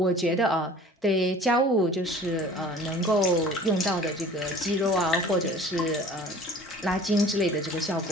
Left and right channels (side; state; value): both; normal; correlation 0.46